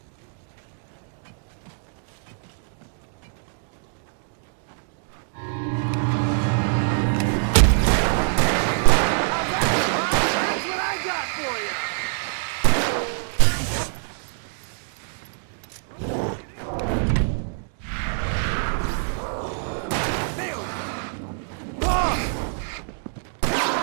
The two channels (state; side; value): silent; left; digital silence